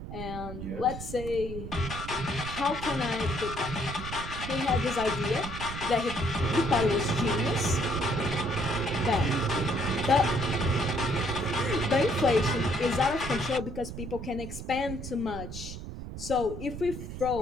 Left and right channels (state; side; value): noise; right; rumble, 9 dB below the sound